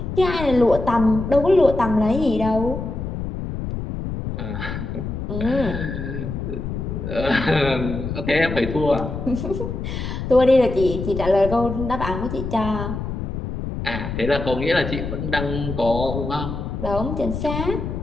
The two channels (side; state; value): left; noise; rumble, 5 dB below the sound